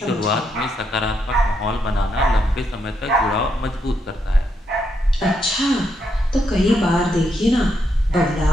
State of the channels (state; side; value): normal; both; correlation 0.79